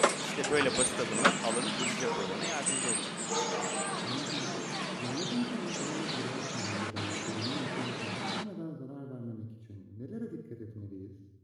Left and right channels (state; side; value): identical; both; correlation 1.00